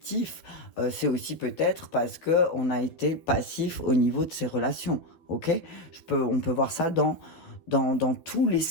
C'est aussi peut-être parce qu'on a été passif au niveau de ses relations. Ok, on peut voir ça dans tous les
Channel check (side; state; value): right; late; 12 ms